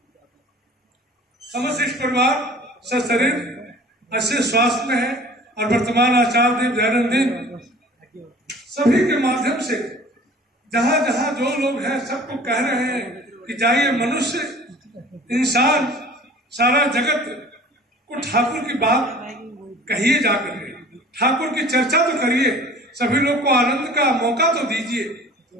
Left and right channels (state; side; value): normal; both; correlation 0.46